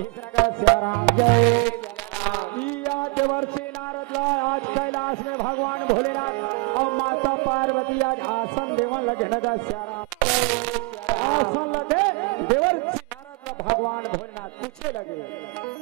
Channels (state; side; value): quieter; left; 29.1 dB